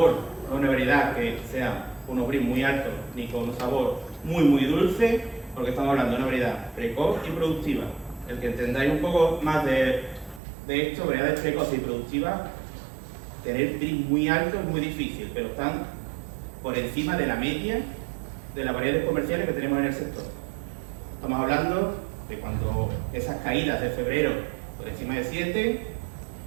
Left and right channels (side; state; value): left; drops out; at 10.4 s